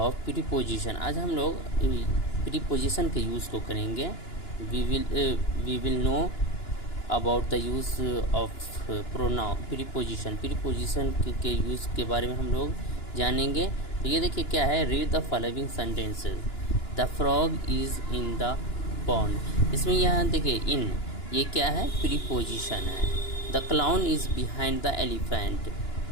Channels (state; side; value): late; right; 2.9 ms